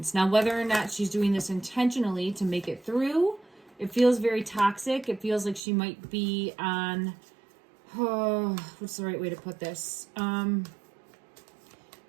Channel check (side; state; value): left; drops out; at 5.6 s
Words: Now, whether or not she's doing this intentionally to make it through, it feels very toxic. It feels like she might be on, what's the right way to put this?